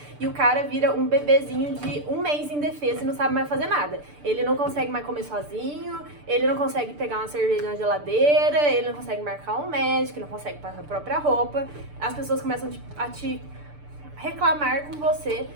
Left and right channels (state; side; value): late; left; 6.8 ms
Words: e o cara vira um bebezinho de 1 mês indefeso e não sabe mais fazer nada. Ele não consegue mais comer sozinho, ele não consegue pegar uma cerveja na geladeira, ele não consegue marcar um médico, ele não consegue passar a própria roupa. As pessoas começam a te reclamar com você